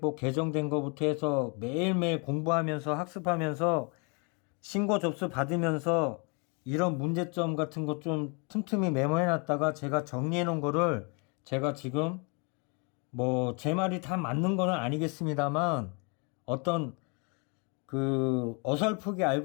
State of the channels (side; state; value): right; quieter; 33.9 dB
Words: 개정된 거부터 해서 매일매일 공부하면서 학습하면서 신고 접수 받으면서 이런 문제점 같은 거 좀 틈틈이 메모해 놨다가 제가 정리해 놓은 거를 제가 지금 뭐 제 말이 다 맞는 거는 아니겠습니다만 어떤 그 어설프게